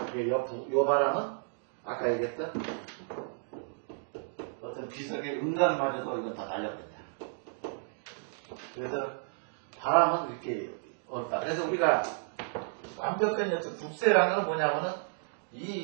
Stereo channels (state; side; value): silent; left; digital silence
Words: 요 바람은, 아까 얘기했던, 어떤 비석의 음각마저도 이건 다 날려버린다. 그래서 바람은 이렇게 없다. 그래서 우리가 완벽한 어떤 국세라는 건 뭐냐면은